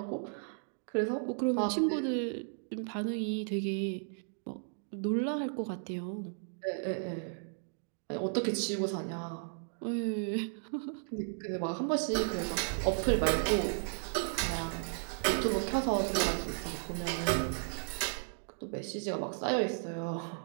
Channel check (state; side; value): silent; left; digital silence